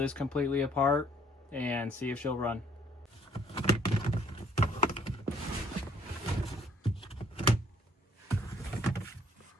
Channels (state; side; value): normal; both; correlation 0.62